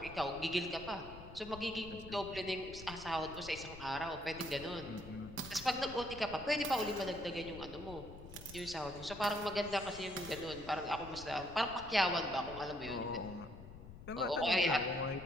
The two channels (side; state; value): left; noise; rumble, 14 dB below the sound